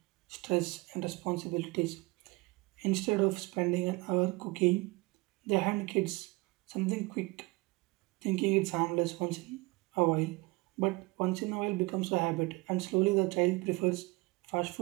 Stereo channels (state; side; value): quieter; left; 24.2 dB